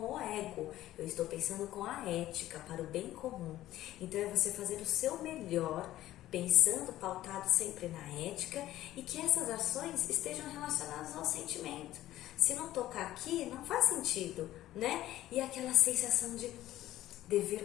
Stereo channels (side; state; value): right; quieter; 14.4 dB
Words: ego, eu estou pensando com a ética, para o bem comum. Então é você fazer o seu melhor, pensando, pautado sempre na ética, e que essas ações estejam relacionadas ao sentimento. Se não tocar aqui, não faz sentido, né? E aquela sensação de